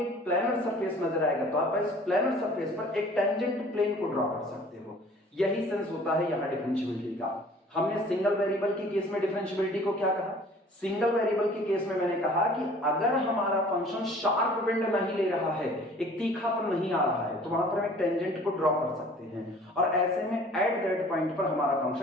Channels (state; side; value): normal; both; correlation 0.50